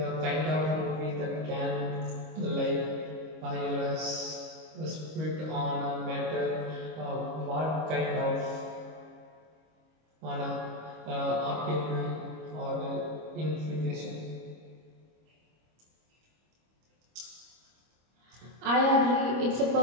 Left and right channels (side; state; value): left; late; 25 ms